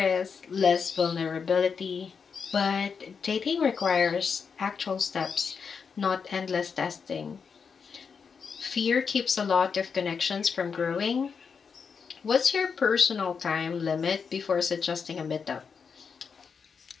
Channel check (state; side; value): quieter; right; 5.9 dB